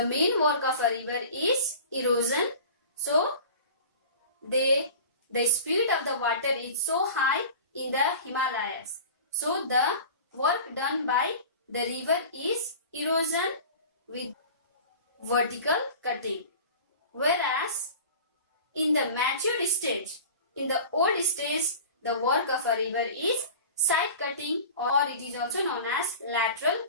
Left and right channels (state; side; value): inverted; both; correlation -0.38